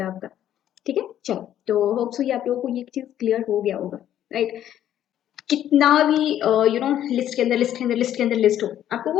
आपका, ठीक है। चलो, तो होप सो ये आप लोगों को ये चीज क्लियर हो गया होगा, राइट। कितना भी लिस्ट के अंदर लिस्ट के अंदर लिस्ट के अंदर लिस्ट हो, आपको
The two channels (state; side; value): quieter; right; 11.3 dB